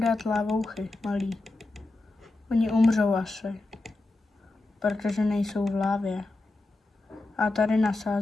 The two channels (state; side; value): quieter; right; 3.0 dB